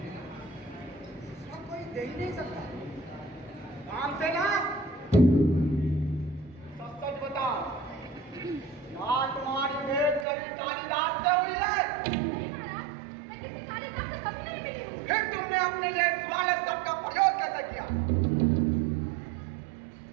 दूसरा कोई दे ही नहीं सकता। काम से ना सच सच बताओ, क्या तुम्हारी भेंट कभी कालिदास से हुई है? नहीं महाराज, मैं किसी कालिदास से कभी नहीं मिली हूँ। फिर तुमने अपने लिए सवाल शब्द का प्रयोग कैसे किया?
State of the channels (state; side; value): drops out; left; at 10.2 s